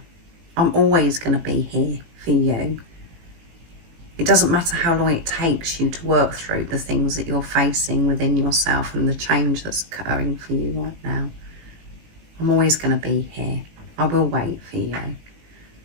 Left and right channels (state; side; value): late; left; 18 ms